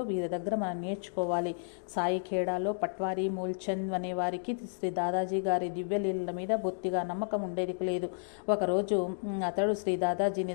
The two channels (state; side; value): silent; right; digital silence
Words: వీరి దగ్గర మనం నేర్చుకోవాలి. సాయి ఖేడాలో పట్వారీ మూల్చంద్ అనే వారికి శ్రీ దాదాజీ గారి దివ్యలీలల మీద బొత్తిగా నమ్మకం ఉండేది లేదు. ఒకరోజు అతడు శ్రీ